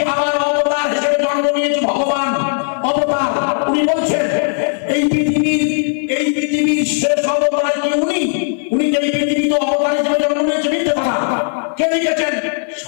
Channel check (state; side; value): silent; right; 55 dB below the other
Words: আমার অবতার হিসেবে জন্ম নিয়েছি, ভগবান অবতার। উনি বলছেন এই পৃথিবীর শেষ অবতার কি উনি? উনি এই পৃথিবীতে অবতার হিসেবে জন্ম নিয়েছে, মিথ্যে কথা। কে লিখেছেন?